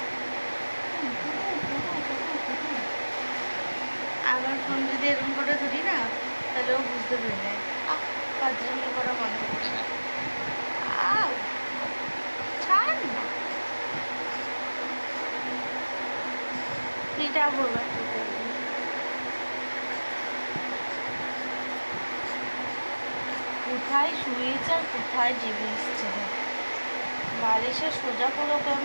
আমার ফোন যদি এরকম করে ধরি না, তাহলে ও বুঝতে পেরে যায়। পাঁচজমি করা বন্ধ করে না। ছাড় না, পিঠা বলবে কোথায় শুয়েছে আর কোথায় জেগে এসছে। বালিশে সোজা করে ওকে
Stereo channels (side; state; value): both; inverted; correlation -1.00